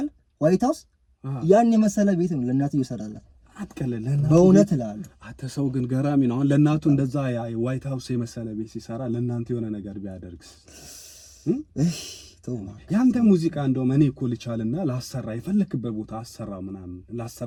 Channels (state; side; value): identical; both; correlation 1.00